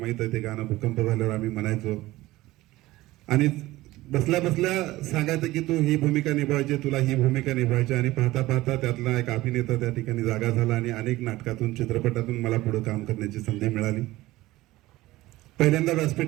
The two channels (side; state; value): left; quieter; 17.9 dB